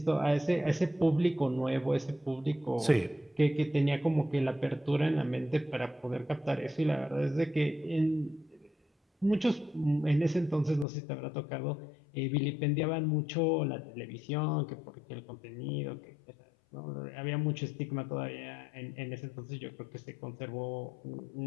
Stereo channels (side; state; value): right; drops out; at 10.9 s